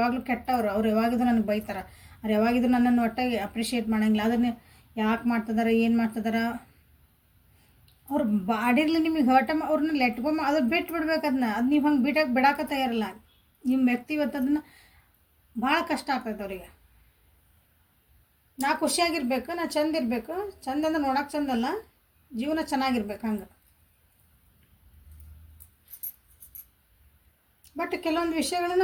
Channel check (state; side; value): identical; both; correlation 1.00